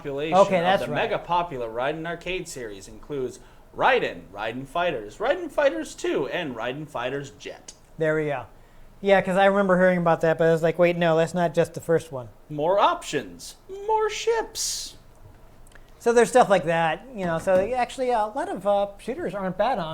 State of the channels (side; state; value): both; identical; correlation 1.00